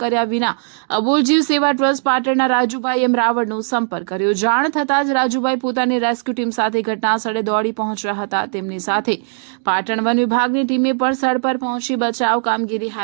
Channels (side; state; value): left; silent; digital silence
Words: કર્યા વિના અબુલ જીવ સેવા ટ્રસ્ટ પાટણના રાજુભાઈ એમ રાવળનો સંપર્ક કર્યો। જાણ થતાં જ રાજુભાઈ પોતાની રેસ્ક્યુ ટીમ સાથે ઘટના સ્થળે દોડી પહોંચ્યા હતા। તેમની સાથે પાટણ વન વિભાગની ટીમે પણ સ્થળ પર પહોંચી બચાવ કામગીરી